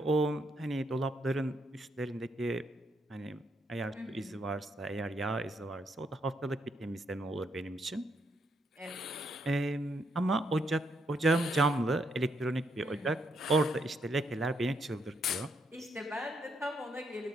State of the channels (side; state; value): both; normal; correlation 0.76